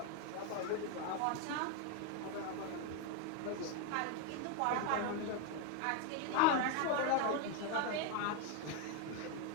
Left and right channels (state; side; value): different; both; correlation 0.01